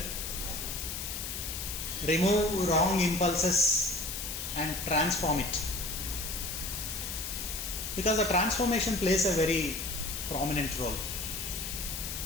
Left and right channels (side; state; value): left; noise; hiss, 5 dB below the sound